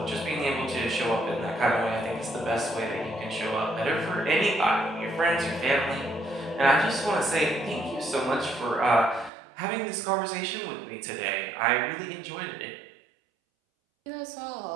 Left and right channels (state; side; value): drops out; left; at 9.3 s